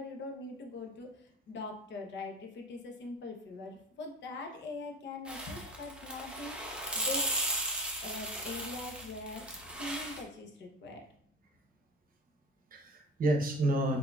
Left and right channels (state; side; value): normal; both; correlation 0.38